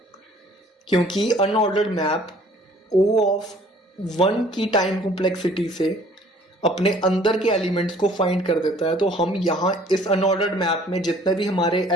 क्योंकि अनऑर्डर्ड मैप O ऑफ 1 की टाइम कॉम्प्लेक्सिटी से अपने अंदर के एलिमेंट्स को फाइंड कर देता है। तो हम यहाँ इस अनऑर्डर्ड मैप में जितने भी हमारे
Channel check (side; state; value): both; normal; correlation 0.55